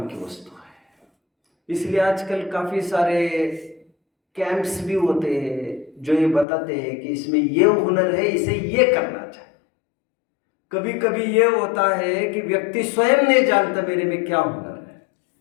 की वस्तु है। इसलिए आजकल काफी सारे कैंप्स भी होते हैं जो ये बताते हैं कि इसमें ये हुनर है, इसे ये करना चाहिए। कभी कभी ये होता है कि व्यक्ति स्वयं नहीं जानता मेरे में क्या हुनर है,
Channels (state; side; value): drops out; right; at 6.5 s